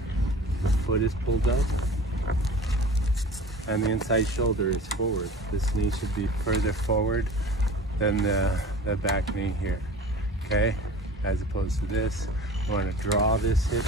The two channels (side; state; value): both; normal; correlation 0.40